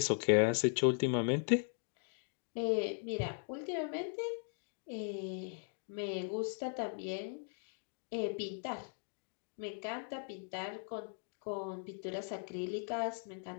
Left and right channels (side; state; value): right; silent; 52 dB below the other